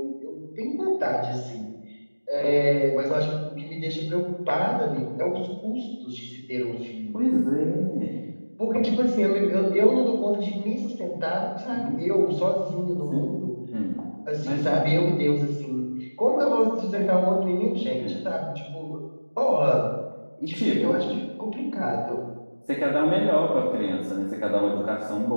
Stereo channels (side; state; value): both; inverted; correlation -1.00